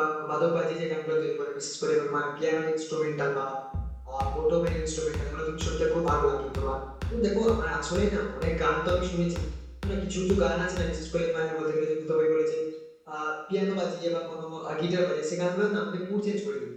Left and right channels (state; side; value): identical; both; correlation 1.00